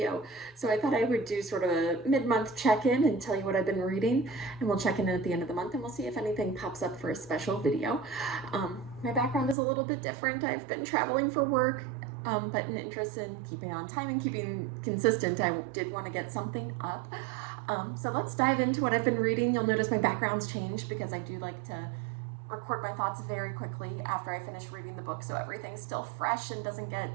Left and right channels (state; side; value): drops out; left; at 9.6 s